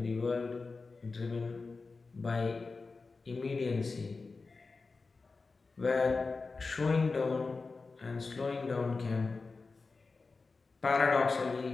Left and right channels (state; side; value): quieter; right; 4.1 dB